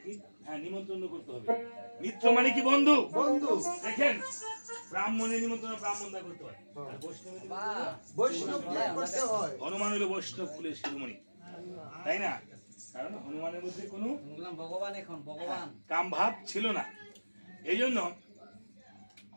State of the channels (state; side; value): inverted; both; correlation -1.00